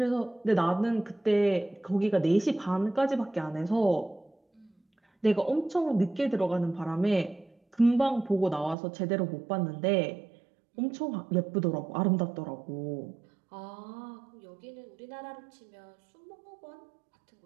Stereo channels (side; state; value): left; drops out; at 8.8 s